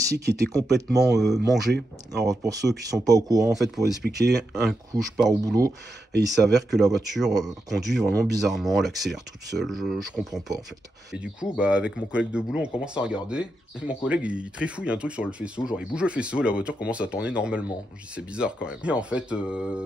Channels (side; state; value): both; normal; correlation 0.86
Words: qui étaient complètement mangés. Alors pour ceux qui sont pas au courant, en fait, pour expliquer, un coup je pars au boulot et il s'avère que la voiture conduit vraiment bizarrement, elle accélère toute seule, je comprends pas en fait. Et du coup, bah avec mon collègue de boulot, on commence à regarder, et mon collègue il trifouille un truc sur le faisceau, genre il bouge le faisceau, la voiture commence à tourner normalement. Je dis c'est bizarre quand même. Et en fait,